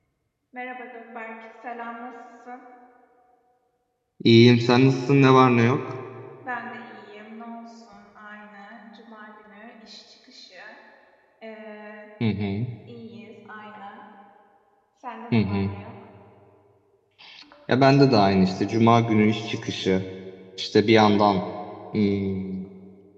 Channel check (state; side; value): identical; both; correlation 1.00